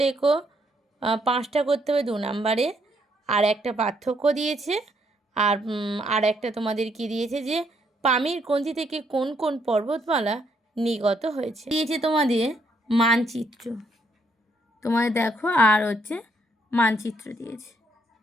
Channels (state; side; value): normal; both; correlation 0.72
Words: লেখো, 5টা করতে হবে 2 নম্বরে। আর একটা পার্থক্য দিয়েছে। আর একটা তোমাদের কি দিয়েছে যে পামির গ্রন্থি থেকে কোন কোন পর্বতমালা নির্গত হয়েছে। দিয়েছে তোমাদের মানচিত্র, তোমাদের দেখো, আর হচ্ছে মানচিত্র দিয়েছে।